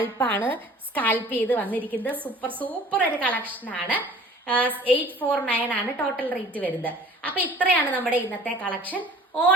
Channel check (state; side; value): normal; both; correlation 0.47